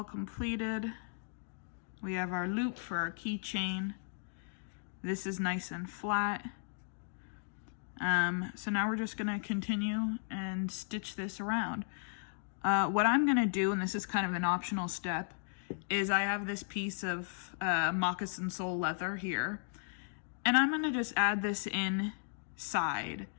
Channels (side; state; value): right; silent; digital silence